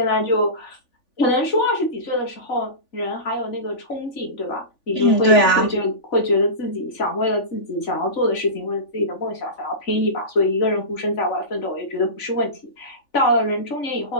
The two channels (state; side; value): late; right; 3.5 ms